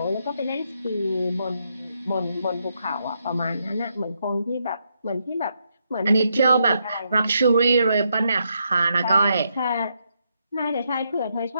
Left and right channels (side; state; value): both; inverted; correlation -0.79